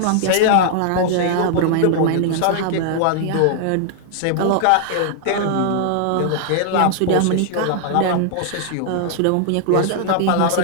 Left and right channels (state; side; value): different; both; correlation -0.01